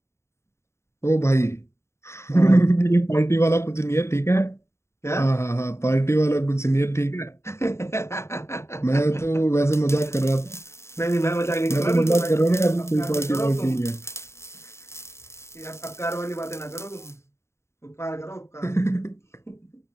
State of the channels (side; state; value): right; late; 0.13 ms